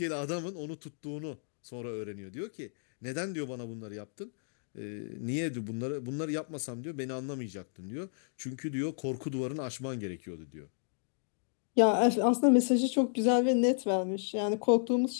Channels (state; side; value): silent; right; digital silence